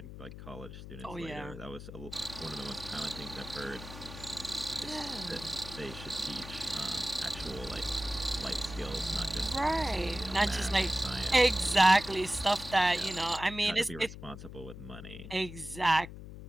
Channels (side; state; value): left; noise; hum, 12 dB below the sound